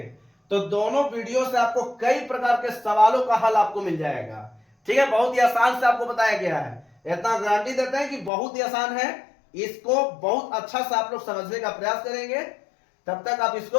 तो दोनों वीडियो से आपको कई प्रकार के सवालों का हल आपको मिल जाएगा, ठीक है। बहुत ही आसान से आपको बताया गया है, इतना गारंटी देते हैं कि बहुत ही आसान है। इसको बहुत अच्छा से आप लोग समझने का प्रयास करेंगे, तब तक आप इसको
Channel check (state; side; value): drops out; right; at 8.3 s